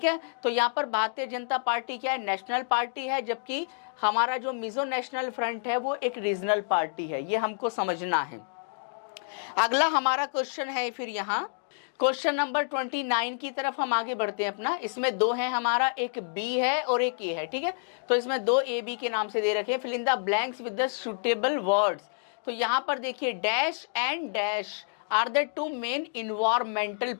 है, तो यहाँ पर Bharatiya Janata party क्या है? National party है, जबकि हमारा जो मिजो नेशनल फ्रंट है वो एक रीजनल पार्टी है। ये हमको समझना है। अगला हमारा क्वेश्चन है फिर यहाँ क्वेश्चन नंबर 29 की तरफ हम आगे बढ़ते हैं अपना। इसमें दो हैं हमारा, एक बी है और एक ए है। ठीक है, तो इसमें दो ए बी के नाम से दे रखे हैं। Fill in the blanks with the suitable words. तो यहाँ पर देखिए dash and dash are the two main environmental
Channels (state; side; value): silent; right; digital silence